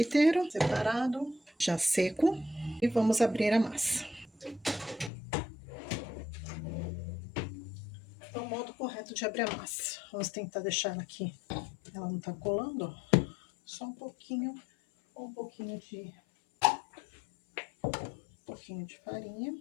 separado, já seco. E vamos abrir a massa. Então, o modo correto de abrir a massa. Vamos tentar deixar ela aqui. Ela não tá colando, ó. Só um pouquinho de farinha.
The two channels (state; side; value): drops out; right; at 5.1 s